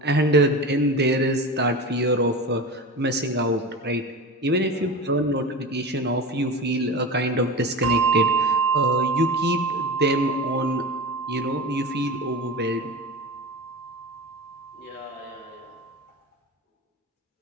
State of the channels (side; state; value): both; normal; correlation 0.29